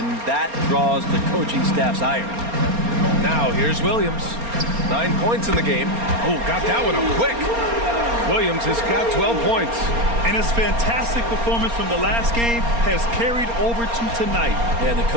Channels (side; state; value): left; late; 4.3 ms